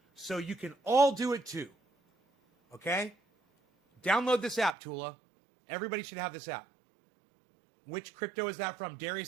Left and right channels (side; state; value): left; drops out; at 4.7 s